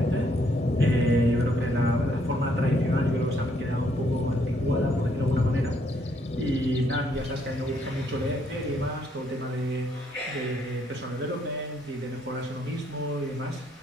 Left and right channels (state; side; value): normal; both; correlation 0.70